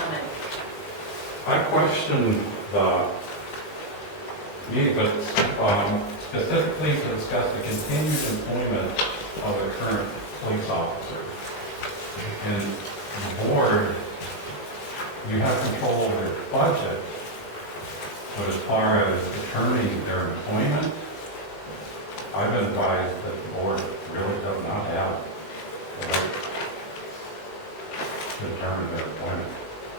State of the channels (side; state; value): right; late; 19 ms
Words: I question the meeting, but specifically to discuss the continued employment of the current police officer. And the board, you have control over their budget, but as far as determining their employment, I've been advised that the board really does not have the right to determine their employment.